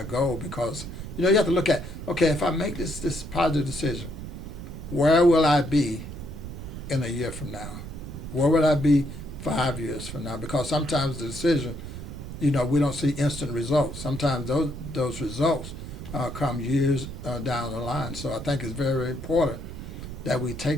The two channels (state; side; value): noise; right; rumble, 10 dB below the sound